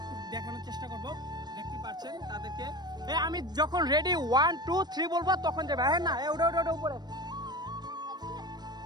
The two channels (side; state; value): left; late; 0.20 ms